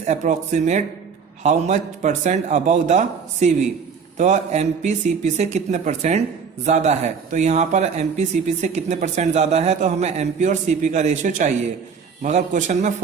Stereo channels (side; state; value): left; quieter; 6.0 dB